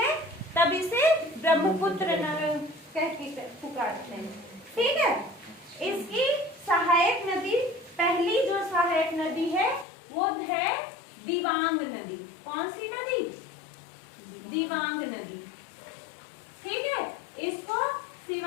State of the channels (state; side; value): drops out; right; at 9.9 s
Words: तब इसे ब्रह्मपुत्र कह के पुकारते हैं, ठीक है। इसकी सहायक नदी, पहली जो सहायक नदी है वो है दिवांग नदी। कौन सी नदी? दिवांग नदी, ठीक है। इसको